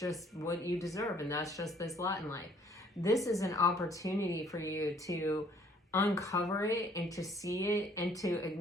what you deserve, and that's just this lot in life. This is an opportunity for you to uncover it and to see it and to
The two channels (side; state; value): both; normal; correlation 0.60